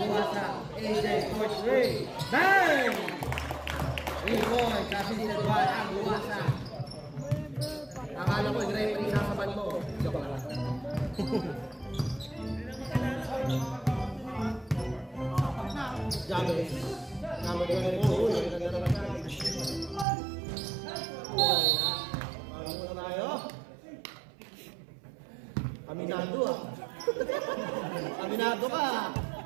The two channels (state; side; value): drops out; left; at 20.1 s